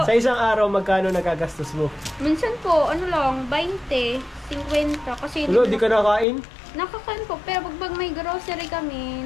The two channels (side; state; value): right; drops out; at 6.2 s